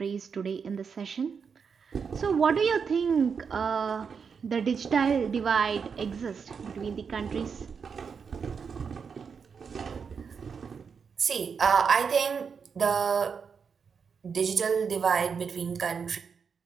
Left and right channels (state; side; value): quieter; left; 6.1 dB